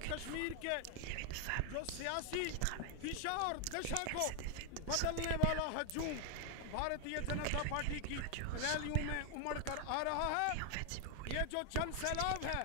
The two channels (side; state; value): both; different; correlation 0.00